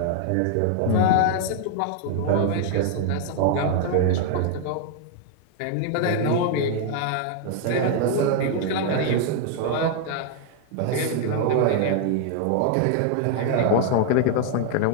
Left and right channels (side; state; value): both; different; correlation 0.00